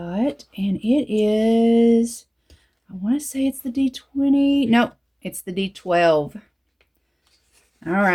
and it is, I want to say it's the D20. Nope, it's the D12. All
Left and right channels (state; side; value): identical; both; correlation 1.00